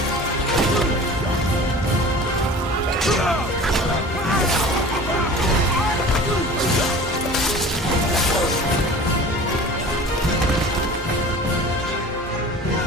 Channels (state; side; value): normal; both; correlation 0.40